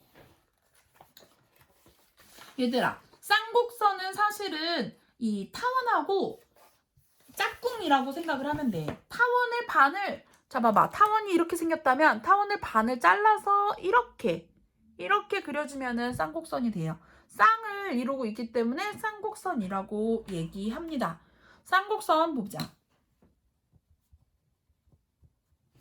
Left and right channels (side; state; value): both; identical; correlation 1.00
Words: 얘들아, 쌍곡선은 사실은 이 타원하고 짝꿍이라고 생각을 하면 돼. 타원의 반을 잡아봐. 타원이 이렇게 생겼다면 타원을 반을 잘라서 이렇게 그려주면은 쌍곡선이 돼요. 쌍을 이루고 있기 때문에 쌍곡선이라고 얘기합니다. 쌍곡선 보자.